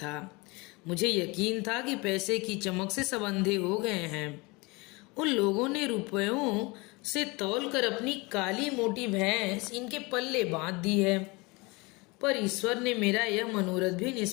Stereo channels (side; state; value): right; quieter; 25.8 dB